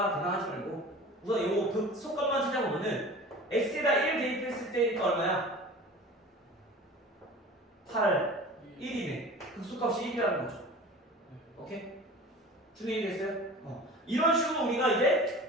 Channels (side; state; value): both; normal; correlation 0.39